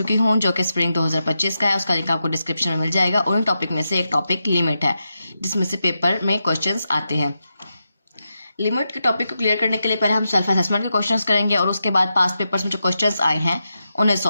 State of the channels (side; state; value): both; inverted; correlation -0.88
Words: हूं जो कि स्प्रिंग 2025 का है। उसका लिंक आपको डिस्क्रिप्शन में मिल जाएगा। और उन टॉपिक में से एक टॉपिक लिमिट है जिसमें से पेपर में क्वेश्चंस आते हैं। लिमिट के टॉपिक को क्लियर करने के लिए पहले हम सेल्फ असेसमेंट के क्वेश्चंस करेंगे और उसके बाद पास्ट पेपर्स में जो क्वेश्चंस आए हैं उन्हें